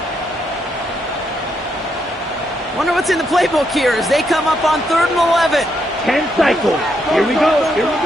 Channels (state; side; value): normal; both; correlation 0.78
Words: Wonder what's in the playbook here as they come up on 3rd and 11. 10 cycles. Here we go.